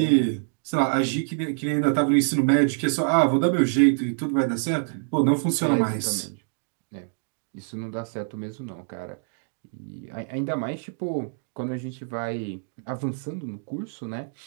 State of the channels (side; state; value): left; silent; digital silence